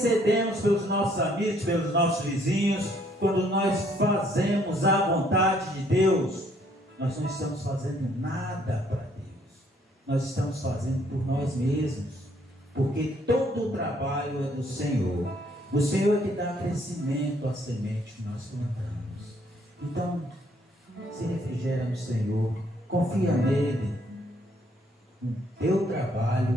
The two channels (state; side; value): normal; both; correlation 0.66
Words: pelos nossos amigos, pelos nossos vizinhos, quando nós fazemos a vontade de Deus, nós não estamos fazendo nada para Deus, nós estamos fazendo por nós mesmos, porque todo o trabalho é do Senhor. O Senhor é que dá crescimento à semente que nós plantamos. Então, se refrigera no Senhor, confia nele. O teu